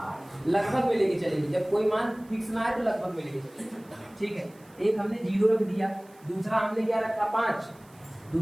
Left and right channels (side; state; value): right; noise; hiss, 28 dB below the sound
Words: लगभग में लेके चलेंगे। जब कोई मान फिक्स ना आए तो लगभग में लेके चलेंगे, ठीक है। एक हमने 0 रख दिया, दूसरा हमने क्या रखा 5,